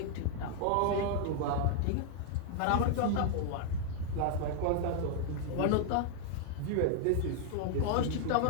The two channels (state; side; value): different; both; correlation 0.00